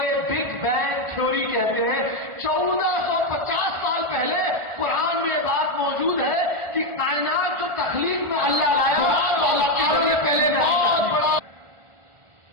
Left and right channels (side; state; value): left; late; 1.4 ms